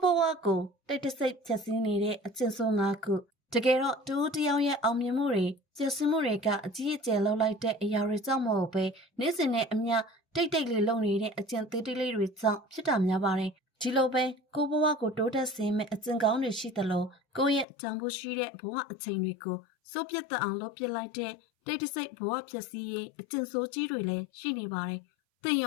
ဘဝကိုတိတ်တဆိတ်ဖြတ်စည်းနေတဲ့အကျင့်ဆိုး၅ခုတကယ်တော့တူတယောက်ရဲ့အောင်မြင်မှုတွေကျဆင်းမှုတွေကအကြီးအကျယ်လောက်လိုက်တဲ့အရာတွေကြောင့်မဟုတ်ပဲနေ့စဉ်နဲ့အမျှတိတ်လေးလုံနေတဲ့အကျင့်သေးသေးလေးတွေကြောင့်ဖြစ်တာများပါတယ်ဒီလိုပဲကိုဘဝကိုတိုးတက်စေမယ့်အကျင့်ကောင်းတွေရှိသလိုကိုယ့်ရဲ့တန်ဖိုးရှိတဲ့ဘဝအချိန်တွေကိုစိုးပြတ်သက်အောင်လုပ်ပစ်လိုက်တဲ့တိတ်တဆိတ်ဘဝဖြတ်စည်းရေးအကျင့်ဆိုးကြီးတွေလည်းရှိနေပါတယ်သင်ရ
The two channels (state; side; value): drops out; right; at 17.7 s